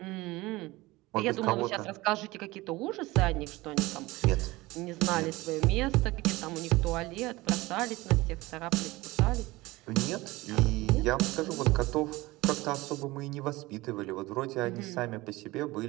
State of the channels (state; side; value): quieter; left; 20.2 dB